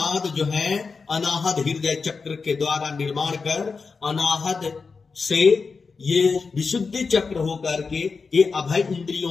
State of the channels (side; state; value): right; quieter; 4.8 dB